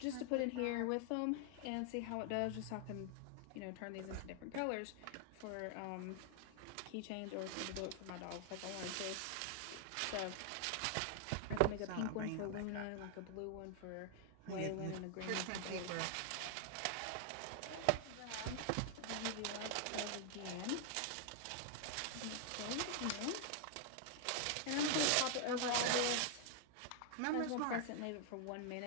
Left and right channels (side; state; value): both; different; correlation 0.00